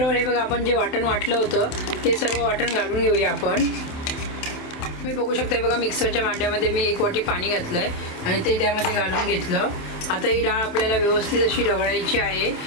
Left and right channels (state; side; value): late; right; 27 ms